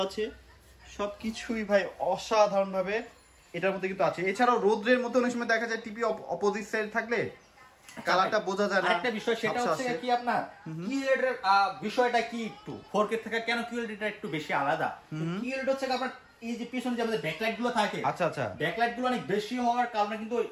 আছে, সবকিছুই ভাই অসাধারণ ভাবে এটার মধ্যে কিন্তু আছে। এছাড়াও রোদ্রের মতো অনেক সময় দেখা যায় টিভি অপোজিট সাইড থাকলে কালারটা বোঝা যায় না। একটা বিষয় সেটা ঝাপসা হচ্ছে আছে। কি আপনার কিউএলইড এর বিষয়টা কি একটু 4K থেকে কেন কিউএলইড টা একটু বেশি আলাদা। কিউএলইড হচ্ছে আপনার এই যে পিছনে যে আমাদের ব্যাকলাইট গুলো থাকে, আচ্ছা আচ্ছা, ব্যাকলাইট গুলো অনেক বেশি হওয়ার কারণে কিন্তু ওই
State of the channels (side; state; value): both; identical; correlation 1.00